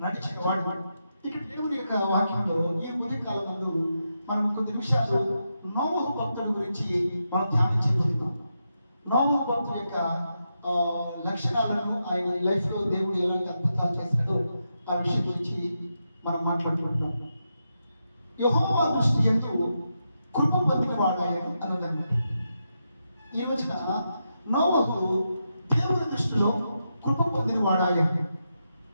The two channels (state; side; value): inverted; both; correlation -0.85